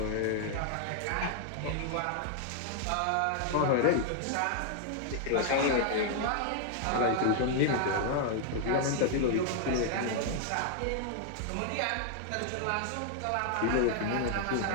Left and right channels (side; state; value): both; different; correlation -0.01